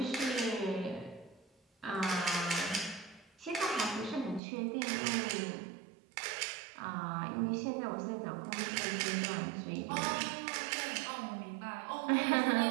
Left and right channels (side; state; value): left; drops out; at 4.4 s